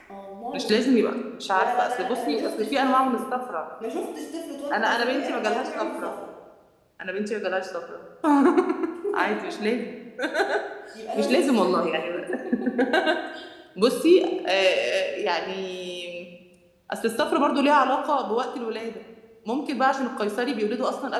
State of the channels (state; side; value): identical; both; correlation 1.00